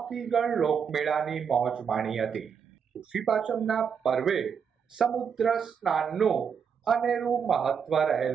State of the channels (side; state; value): left; quieter; 6.9 dB